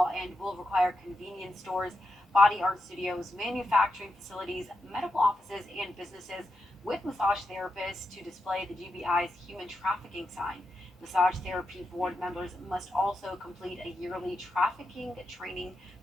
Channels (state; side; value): normal; both; correlation 0.86